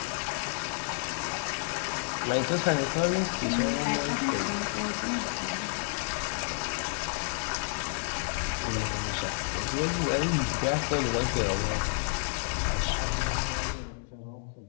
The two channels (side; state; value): right; silent; digital silence